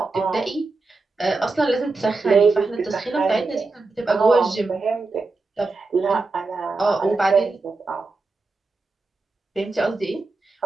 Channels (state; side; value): quieter; left; 3.6 dB